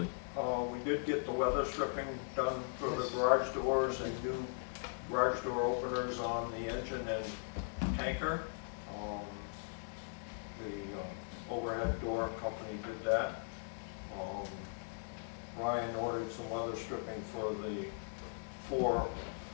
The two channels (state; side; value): silent; right; digital silence